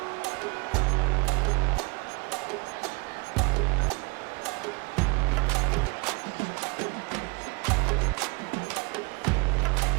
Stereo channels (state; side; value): quieter; left; 27.9 dB